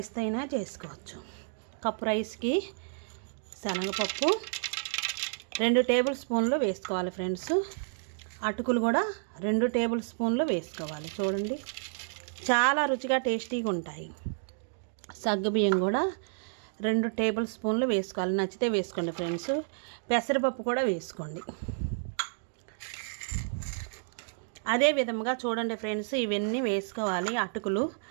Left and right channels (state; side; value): silent; left; digital silence